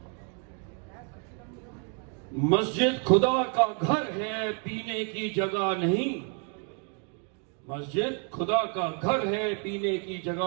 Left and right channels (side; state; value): left; quieter; 38.9 dB